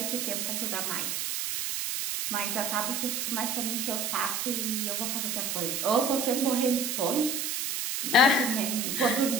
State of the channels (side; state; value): right; noise; hiss, 1 dB below the sound